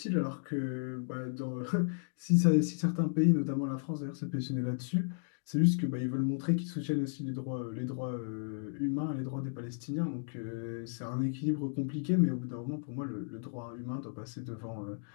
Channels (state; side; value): silent; right; digital silence